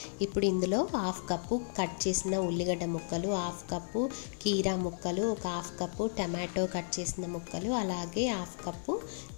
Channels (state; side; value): silent; right; 55 dB below the other